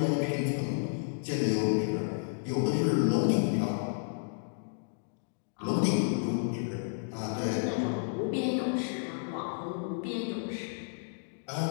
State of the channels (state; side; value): silent; right; digital silence